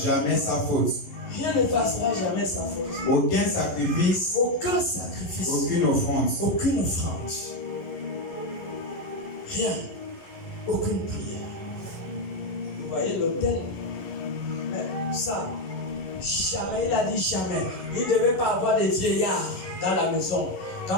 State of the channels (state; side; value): late; right; 11 ms